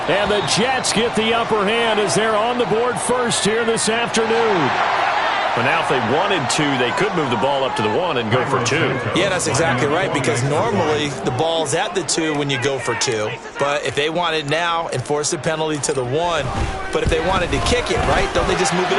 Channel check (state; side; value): identical; both; correlation 1.00